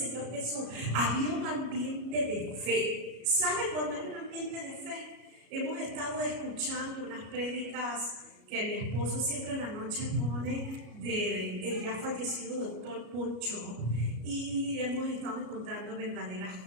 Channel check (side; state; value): left; late; 33 ms